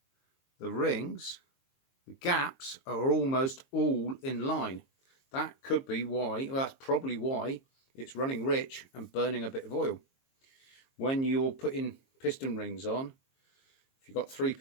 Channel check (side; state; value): right; late; 22 ms